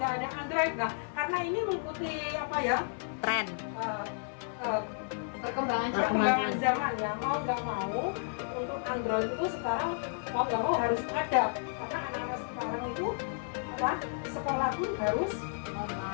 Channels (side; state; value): right; silent; 56 dB below the other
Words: ada Android, karena ini mengikuti tren. Perkembangan zaman ya, mau nggak mau untuk Android itu sekarang mau nggak mau harus ada, karena anak-anak sekarang itu sekolah pun harus